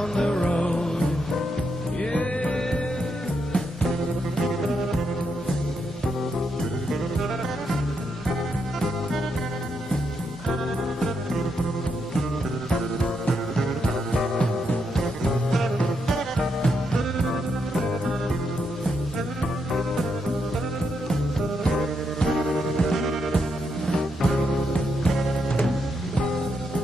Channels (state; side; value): normal; both; correlation 0.80